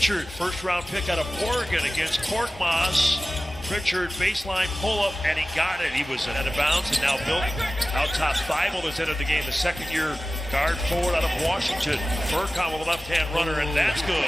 first round pick out of Oregon against Korkmaz. Pritchard baseline pull up, and he got it. He was out of bounds, and now Bill out top. Thibault has entered the game, the second year guard forward out of Washington. Furcon with a left-hand runner, and that's good.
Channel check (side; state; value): both; normal; correlation 0.96